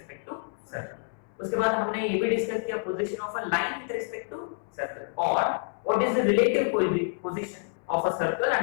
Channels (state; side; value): silent; right; 59 dB below the other